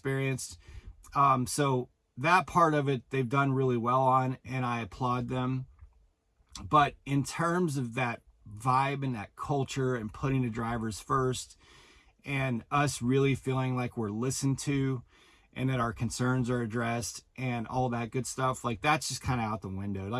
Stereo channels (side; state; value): both; identical; correlation 1.00